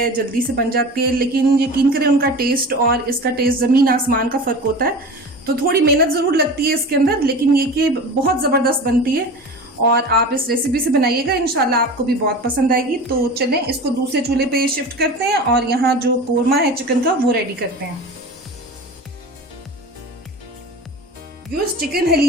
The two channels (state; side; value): normal; both; correlation 0.34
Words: जल्दी से बन जाती है, लेकिन यकीन करें उनका टेस्ट और इसका टेस्ट जमीन आसमान का फर्क होता है। तो थोड़ी मेहनत जरूर लगती है इसके अंदर, लेकिन ये कि बहुत जबरदस्त बनती है और आप इस रेसिपी से बनाइएगा, इंशाल्लाह आपको भी बहुत पसंद आएगी। तो चलें इसको दूसरे चूल्हे पे शिफ्ट करते हैं और यहाँ जो कोरमा है चिकन का वो रेडी करते हैं। व्यूअर्स, चिकन